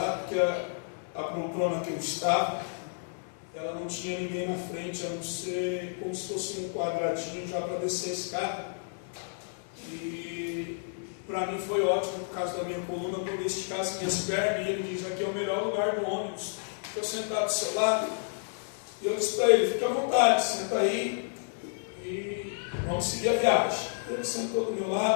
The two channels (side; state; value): right; silent; digital silence